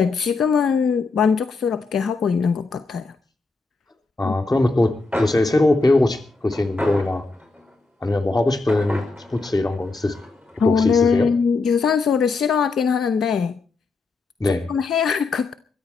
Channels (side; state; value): right; quieter; 3.8 dB